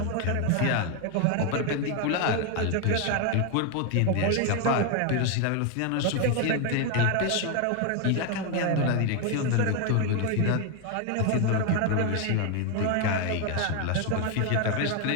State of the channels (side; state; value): both; different; correlation 0.01